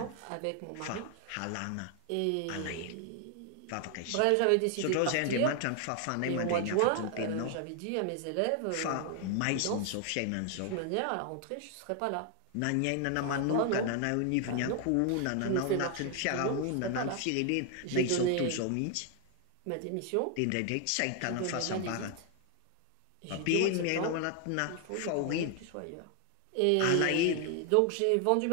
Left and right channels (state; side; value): different; both; correlation 0.00